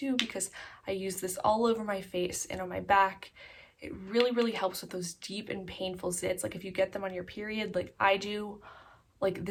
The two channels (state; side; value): identical; both; correlation 1.00